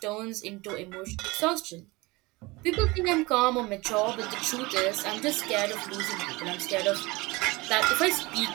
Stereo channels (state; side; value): quieter; left; 23.2 dB